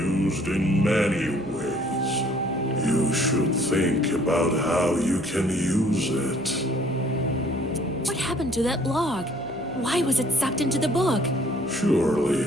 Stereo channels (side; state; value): right; noise; hum, 19 dB below the sound